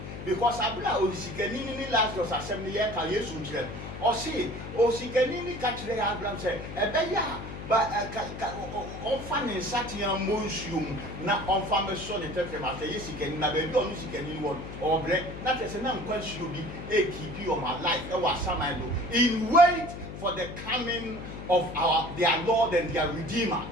Because abla o sikani ni Lazarus asem ne ye ka Yesu nkire o say o sikani ni ka kire Abraham say ebe ya ba on fa ne satian monsuum na on fa me so ne tefe ma say sikani na be bi onu sikani ni won o bre na tese na nkwanshi obi e keep your my life e wa samando in wait for the coming of their Lord and their Redeemer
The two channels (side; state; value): left; noise; hum, 10 dB below the sound